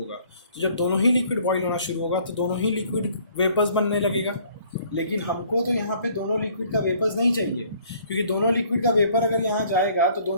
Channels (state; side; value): inverted; both; correlation -0.58